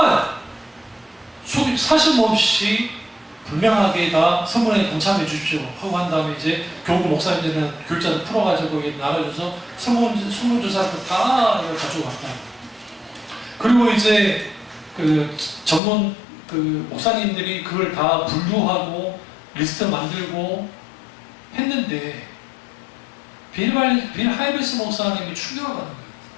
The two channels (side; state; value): right; drops out; at 15.8 s